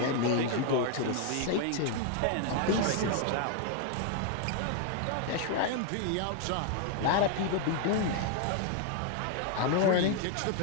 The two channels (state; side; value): different; both; correlation 0.00